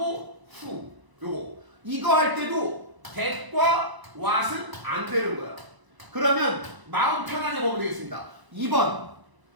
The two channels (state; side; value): late; left; 1.0 ms